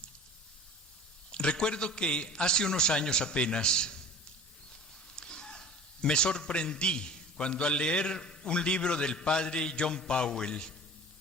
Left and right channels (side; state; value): both; normal; correlation 0.41